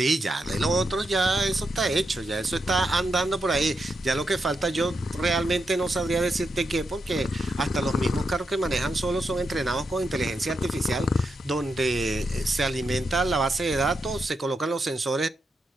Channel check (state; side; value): normal; both; correlation 0.84